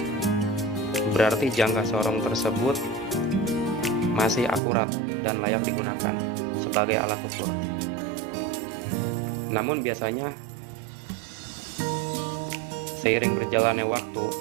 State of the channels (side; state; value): left; drops out; at 4.6 s